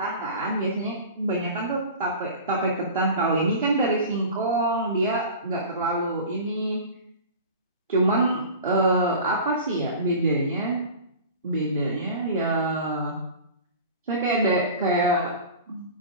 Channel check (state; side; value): inverted; both; correlation -0.36